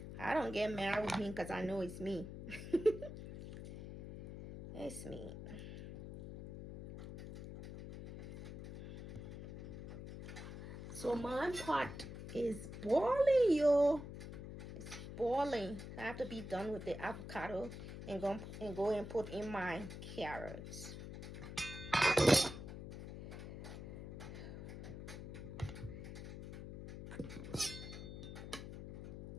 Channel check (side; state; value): left; noise; hum, 10 dB below the sound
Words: I don't get mad with him because I know it's me. It's me. So my pot is boiling, yo. It's boiling. I have to be done with the avocado and go and put in my carrots.